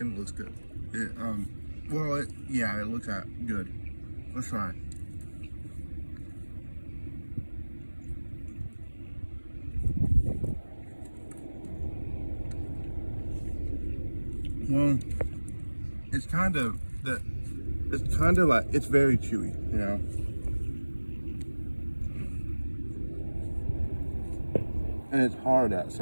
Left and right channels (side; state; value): both; inverted; correlation -1.00